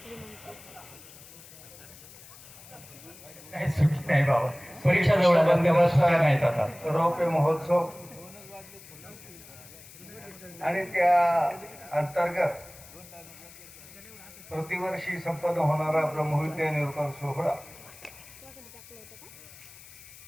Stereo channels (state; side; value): noise; left; hiss, 19 dB below the sound